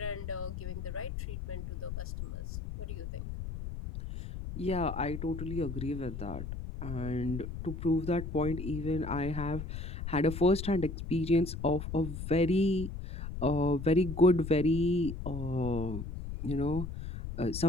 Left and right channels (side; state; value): left; noise; rumble, 7 dB below the sound